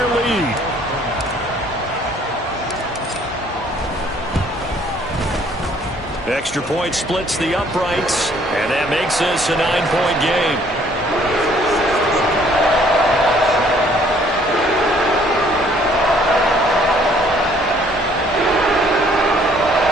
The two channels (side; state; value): both; normal; correlation 0.61